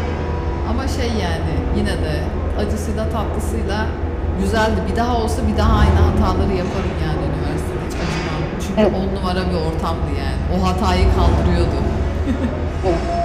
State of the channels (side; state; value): both; identical; correlation 1.00